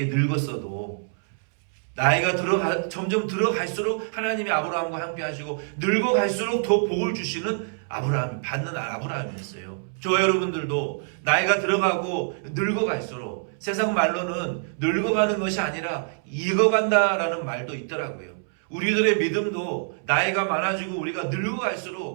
늙었어도 나이가 점점 들어갈수록 하나님이 아브라함과 함께 하시고, 늙어갈수록 더 복을 주시는 받는 아브라함이었어요. 저와 여러분들도 나이가 들어가고 늙어갈수록, 세상 말로는 늙어가는 것이 아니라 익어간다라는 말도 있더라고요. 우리들의 믿음도 나이가 많아지고 우리가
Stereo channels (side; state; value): left; silent; 61 dB below the other